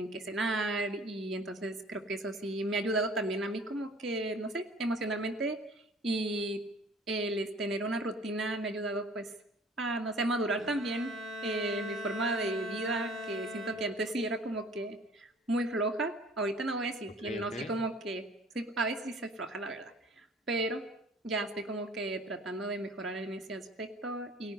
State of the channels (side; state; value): both; normal; correlation 0.50